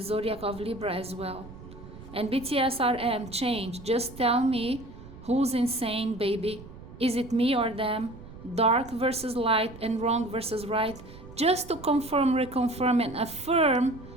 zodiac of Libra as well. And BTS RM, change, just tell me who's insane, baby. Is it me or them? Dark versus light and wrong versus right. Just to confirm, reconfirm, and affirm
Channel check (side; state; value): right; noise; rumble, 16 dB below the sound